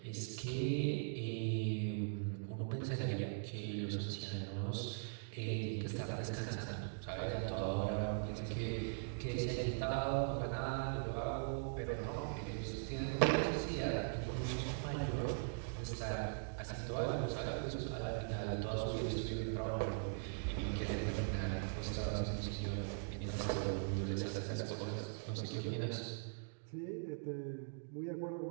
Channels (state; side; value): silent; left; digital silence